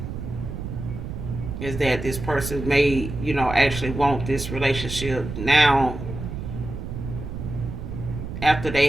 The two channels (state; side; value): noise; right; rumble, 7 dB below the sound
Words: Is that this person may, actually want this relationship now after they